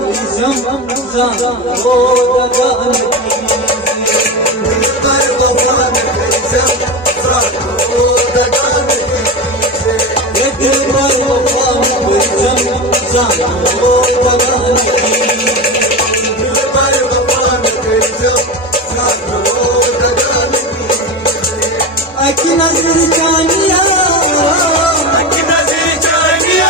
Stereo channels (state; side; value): normal; both; correlation 0.22